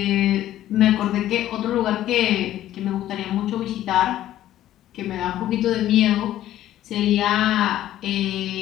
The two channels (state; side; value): quieter; right; 13.0 dB